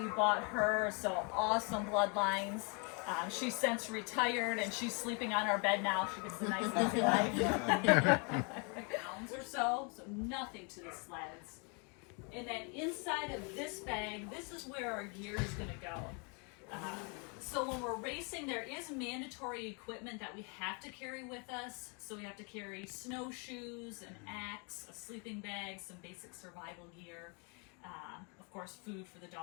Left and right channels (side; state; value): right; quieter; 34.7 dB